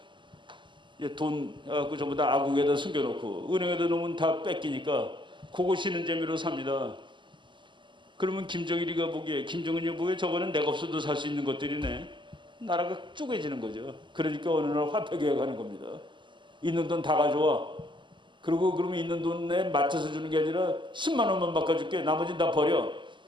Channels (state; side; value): late; left; 0.23 ms